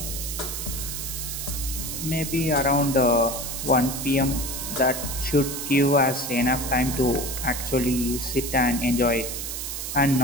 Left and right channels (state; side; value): noise; right; hiss, 5 dB below the sound